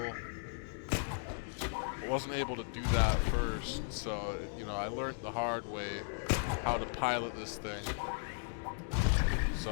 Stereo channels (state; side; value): silent; right; 54 dB below the other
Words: I wasn't able to do that first, so, you know, I learned the hard way how to pilot this thing.